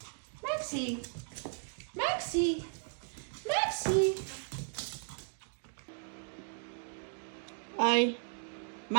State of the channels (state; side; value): silent; left; digital silence